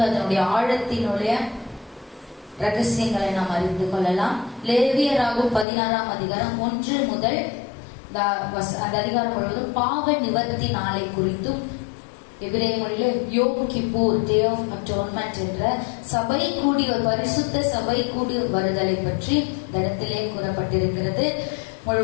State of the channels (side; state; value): right; drops out; at 5.7 s